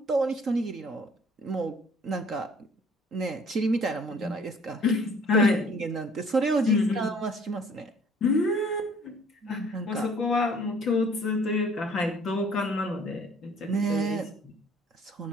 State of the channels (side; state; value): both; normal; correlation 0.56